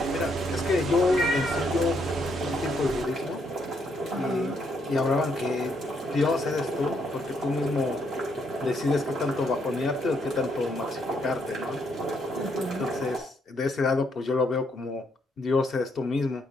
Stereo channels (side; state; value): both; normal; correlation 0.74